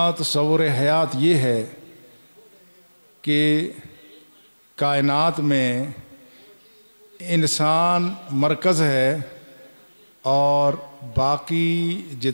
تصور حیات یہ ہے کہ کائنات میں انسان مرکز ہے اور باقی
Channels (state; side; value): inverted; both; correlation -1.00